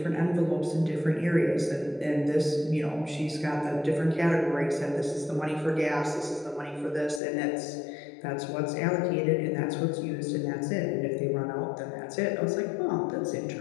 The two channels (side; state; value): right; drops out; at 7.2 s